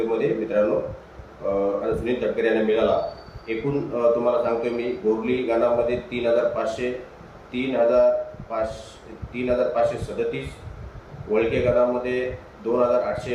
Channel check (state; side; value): identical; both; correlation 1.00